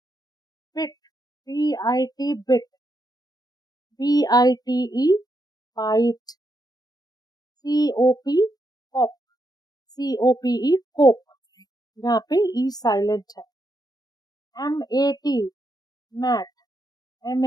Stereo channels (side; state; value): right; late; 0.19 ms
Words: Bit, BIT bit, BITE bite, COP cop, COPE cope, यहाँ पे ई साइलेंट है। MAT mat,